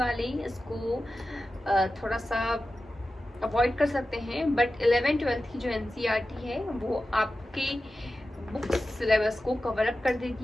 इसको थोड़ा सा अवॉइड कर सकते हैं, बट 11th-12th की जो एनसीईआरटी है वो आपके बुक सिलेबस को कवर अप कर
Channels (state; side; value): normal; both; correlation 0.93